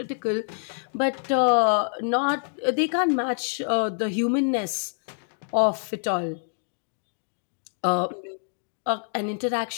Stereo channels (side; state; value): right; silent; digital silence